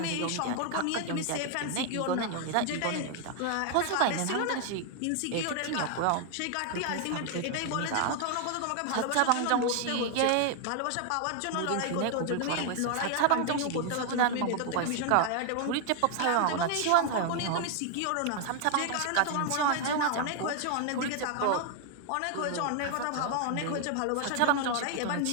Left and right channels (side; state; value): both; different; correlation 0.00